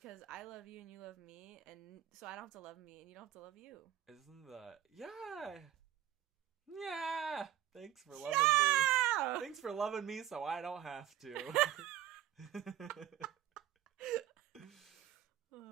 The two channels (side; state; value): left; quieter; 11.7 dB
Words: I love you and you love me, and so I don't have to love me and you don't have to love you. Isn't that... Yeah! Yeah! Thanks for loving me. Thanks for loving me so I don't have to.